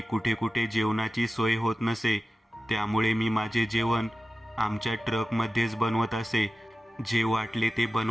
कुठे कुठे जेवणाची सोय होत नसे. त्यामुळे मी माझे जेवण आमच्या ट्रकमध्येच बनवत असे. जे वाटले ते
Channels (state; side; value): normal; both; correlation 0.95